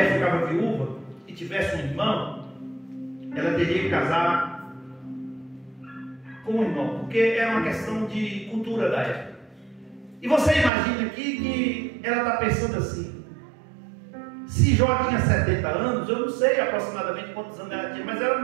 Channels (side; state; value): left; drops out; at 10.7 s